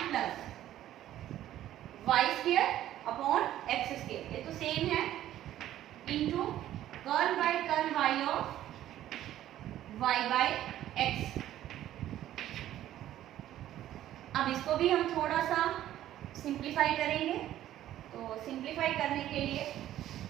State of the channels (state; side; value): quieter; left; 12.8 dB